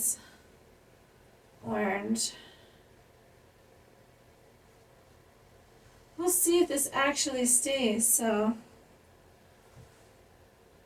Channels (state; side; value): identical; both; correlation 1.00